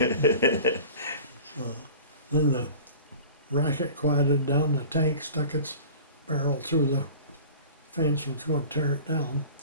then the racket quieted down. The tank stuck its barrel through the fence and was going to tear it down.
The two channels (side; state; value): both; inverted; correlation -0.41